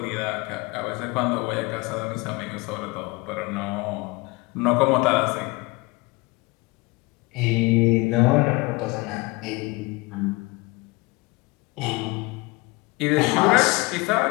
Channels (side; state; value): right; quieter; 24.6 dB